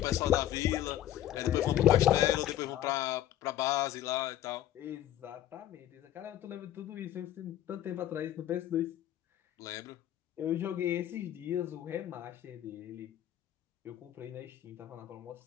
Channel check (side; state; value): right; quieter; 12.4 dB